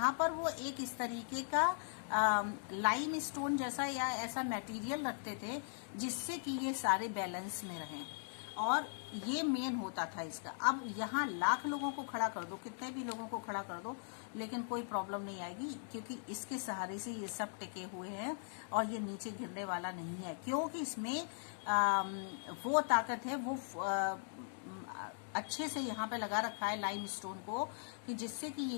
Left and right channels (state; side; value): silent; right; digital silence